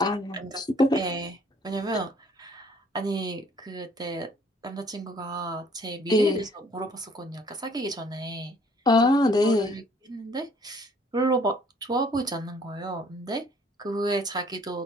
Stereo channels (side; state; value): both; normal; correlation 0.60